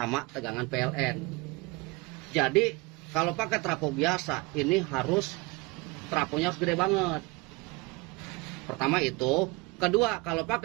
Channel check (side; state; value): left; quieter; 24.9 dB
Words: tegangan PLN. Jadi kalau pakai trafo biasa ini trafonya harus gede banget. Pertama itu, kedua kalau